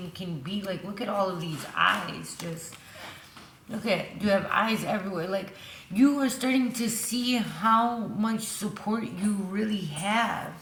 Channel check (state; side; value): identical; both; correlation 1.00